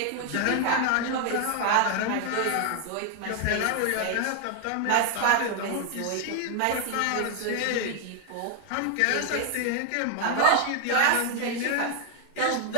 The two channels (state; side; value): different; both; correlation 0.00